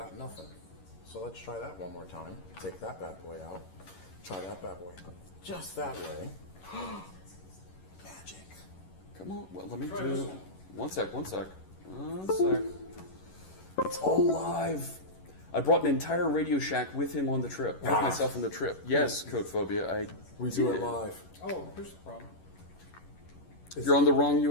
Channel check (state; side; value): late; right; 11 ms